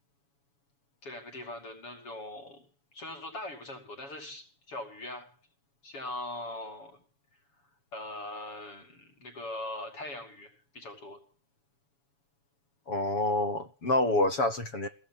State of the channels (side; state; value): right; late; 7.1 ms